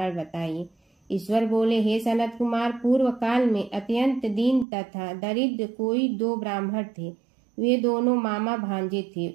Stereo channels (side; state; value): left; drops out; at 4.7 s